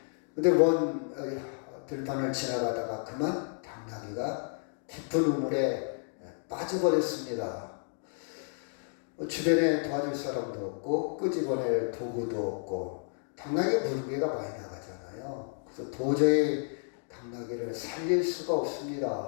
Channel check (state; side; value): silent; right; 57 dB below the other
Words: 근데 먼 들판을 지나가다가 그만 당나귀가 깊은 우물에 빠져버렸습니다. 주변에 도와줄 사람도 없고 끄집어낼 도구도 없고 당나귀 무게가 많이 나가잖아요. 그래서 도저히 당나귀를 살릴 수가